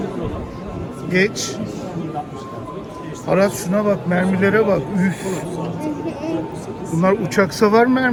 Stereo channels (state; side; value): identical; both; correlation 1.00